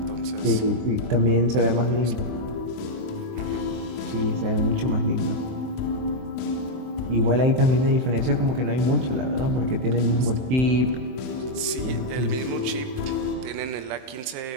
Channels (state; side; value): late; left; 23 ms